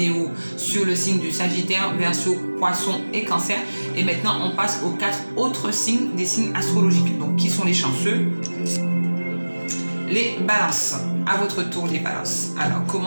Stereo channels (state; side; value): inverted; both; correlation -1.00